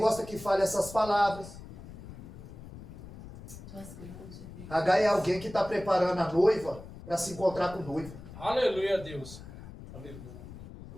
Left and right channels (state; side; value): noise; left; rumble, 14 dB below the sound